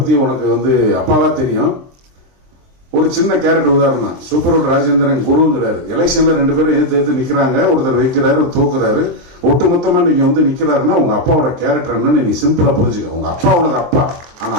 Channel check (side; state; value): left; late; 23 ms